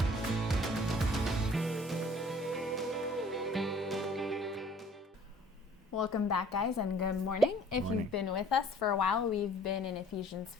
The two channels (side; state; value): both; normal; correlation 0.54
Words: Welcome back, guys, and good morning. If Morning. you've been with us for a while, we've been in Ephesians